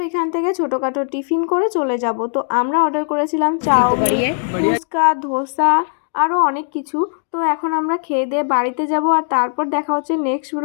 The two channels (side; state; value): right; silent; 61 dB below the other